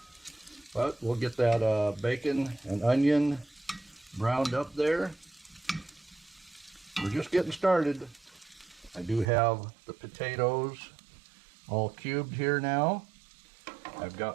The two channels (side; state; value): left; drops out; at 9.2 s